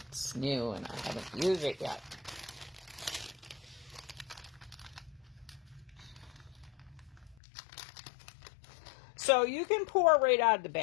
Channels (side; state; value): right; drops out; at 7.4 s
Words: new and I haven't used it yet. So you can pour right out of the